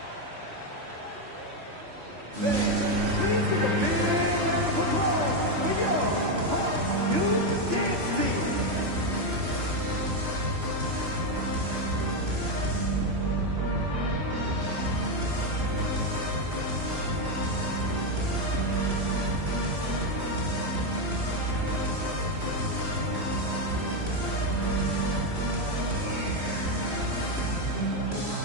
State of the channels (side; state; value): left; late; 3.1 ms